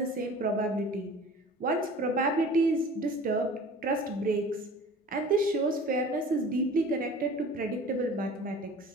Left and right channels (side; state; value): both; normal; correlation 0.43